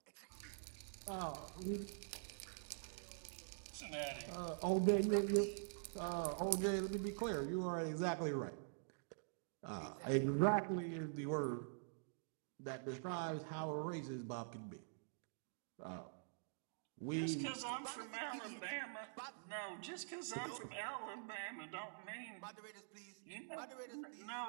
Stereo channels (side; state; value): left; silent; digital silence